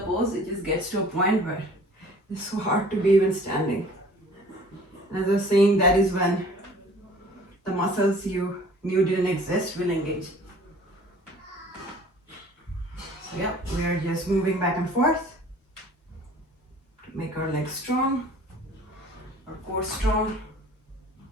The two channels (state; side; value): normal; both; correlation 0.50